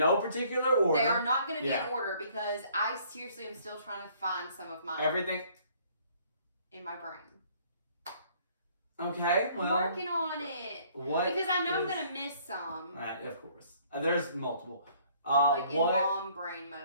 particular order. They are not going to be in order because I seriously am still trying to find some of mine. Everything in my brain. Okay, well, I'm working on it. What? Because I know I'm going to miss some. Of course. There's multiple. Like in mom brain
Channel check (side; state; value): both; inverted; correlation -0.60